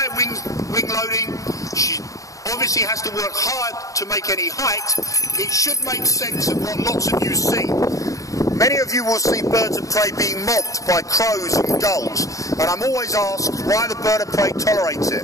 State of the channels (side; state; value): right; late; 0.16 ms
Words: wing loading, she obviously has to work hard to make any height. It should make sense of what lots of you see. Many of you will see birds of prey being mobbed by crows and gulls, and I'm always asked why the bird of prey tolerates it.